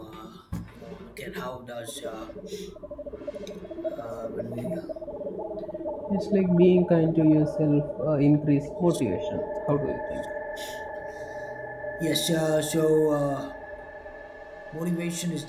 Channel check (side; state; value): both; identical; correlation 1.00